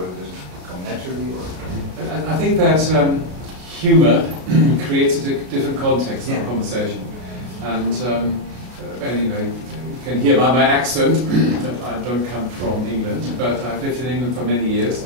does it come naturally? Or? I think that humor creates a different context of a conversation. And you can hear by my accent that I don't come from England, but I've lived in England for many years,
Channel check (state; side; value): late; left; 33 ms